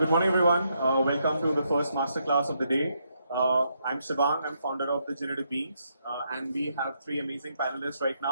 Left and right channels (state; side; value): inverted; both; correlation -0.78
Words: Good morning, everyone. Welcome to the first masterclass of the day. I'm Shivang. I'm founder of the Generative Beans, and we have three amazing panelists right